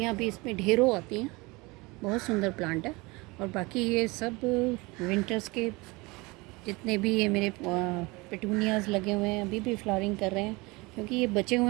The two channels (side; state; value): left; quieter; 24.4 dB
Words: भी इसमें ढेरों आती हैं। बहुत सुंदर प्लांट है। और बाकी ये सब विंटर्स के जितने भी ये मेरे पेटूनियाज़ लगे हुए हैं, अभी भी फ्लावरिंग कर रहे हैं, क्योंकि ये बचे